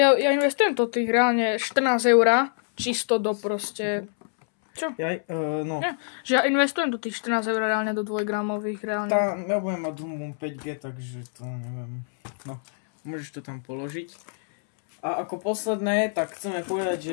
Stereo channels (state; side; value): silent; right; 61 dB below the other